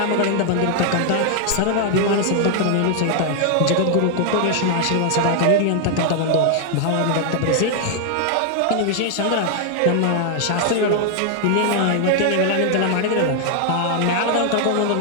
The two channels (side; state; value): both; different; correlation 0.00